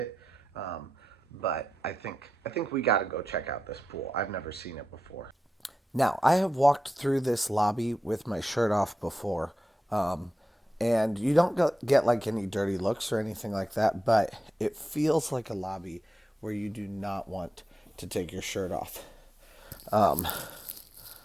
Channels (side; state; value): both; normal; correlation 0.90